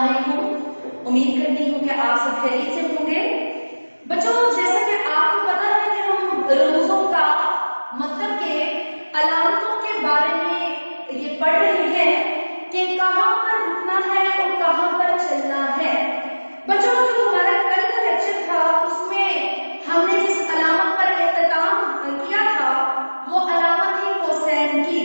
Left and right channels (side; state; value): both; inverted; correlation -1.00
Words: उम्मीद करती हूँ कि आप सब खैरियत से होंगे। बच्चों, जैसा कि आपको पता है कि हम रमूजों का मतलब के अलामतों के बारे में ये पढ़ रहे हैं कि कहाँ पर रुकना है और कहाँ पर चलना है। बच्चों, जो हमारा कल का लेक्चर था उसमें हमने जिस अलामत पर इख्तिताम किया था वो अलामत थी कोसैन की।